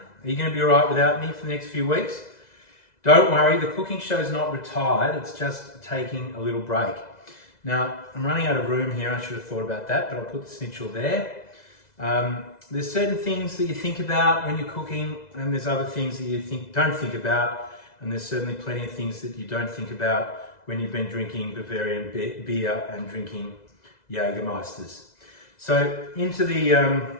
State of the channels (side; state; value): right; late; 2.0 ms